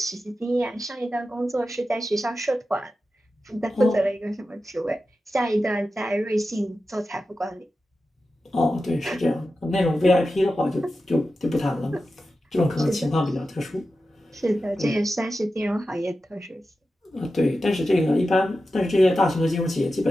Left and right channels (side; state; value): both; normal; correlation 0.92